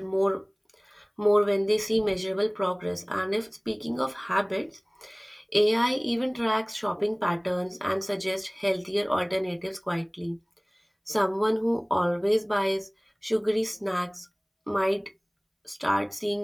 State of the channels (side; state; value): both; identical; correlation 1.00